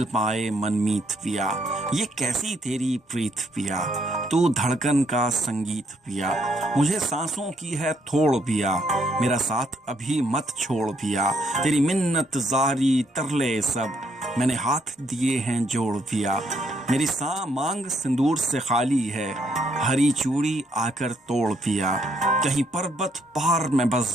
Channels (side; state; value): both; normal; correlation 0.72